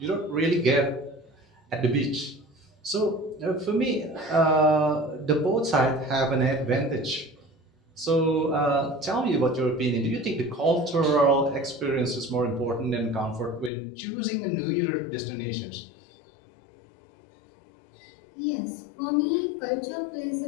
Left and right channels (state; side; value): drops out; right; at 13.7 s